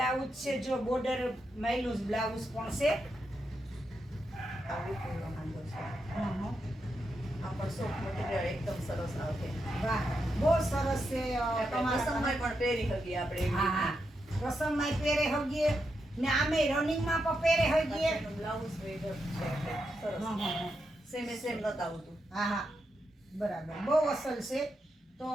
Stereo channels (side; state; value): both; normal; correlation 0.84